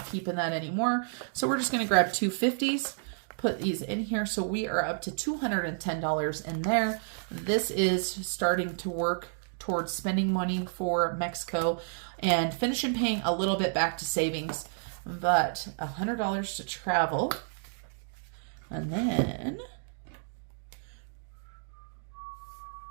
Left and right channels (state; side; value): silent; left; digital silence